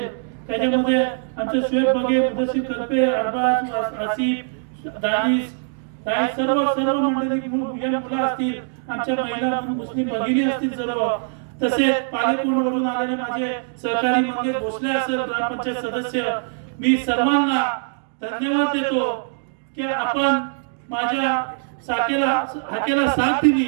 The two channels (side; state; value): left; silent; digital silence